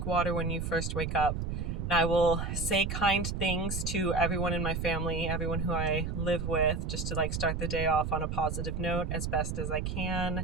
water when you first wake up. And I will say kind things to everyone in my family, everyone who I live with, just to like start the day off on a positive note as best as I can.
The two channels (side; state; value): right; noise; rumble, 3 dB below the sound